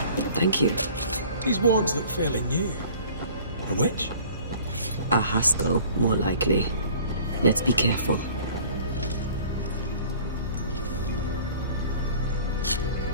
Thank you. These wards look fairly new. A witch? A Haskell, more likely. Let's be careful.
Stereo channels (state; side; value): inverted; both; correlation -0.48